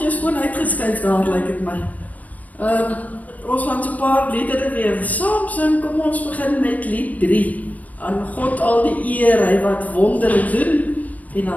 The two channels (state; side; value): late; right; 0.073 ms